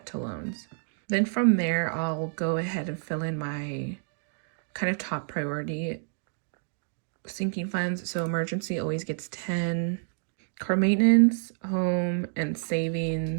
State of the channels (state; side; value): silent; left; digital silence